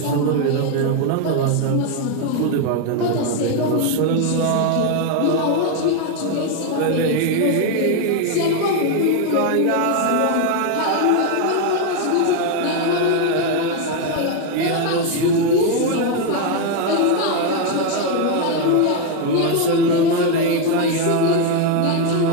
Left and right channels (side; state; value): both; different; correlation 0.01